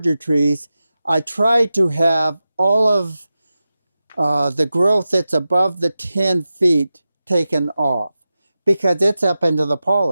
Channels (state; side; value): inverted; both; correlation -0.93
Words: trees, I try to have all of the growth that's above the 10 feet taken off because it's up into the